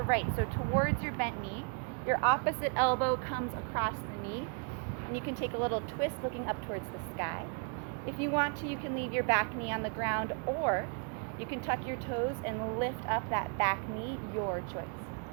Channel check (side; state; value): left; quieter; 38.5 dB